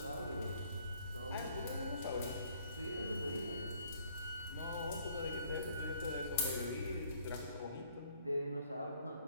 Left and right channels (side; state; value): both; inverted; correlation -0.62